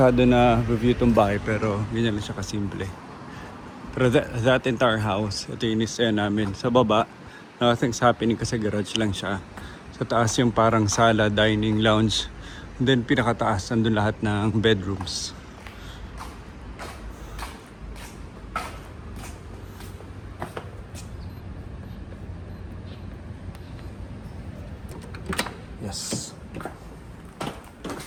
na review itong bahay pero ganyan lang siya kasimple. Pero that entire house, ito yung inisaya namin. Sa baba, nothing's happening kasi garage lang siya. Sa taas yung parang sala, dining, lounge. And then pinakataas, nandun lahat ng bedrooms. Yes.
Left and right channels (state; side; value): identical; both; correlation 1.00